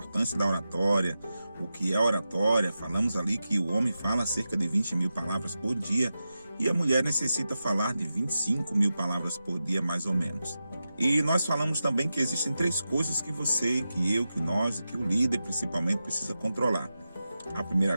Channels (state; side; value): inverted; both; correlation -0.91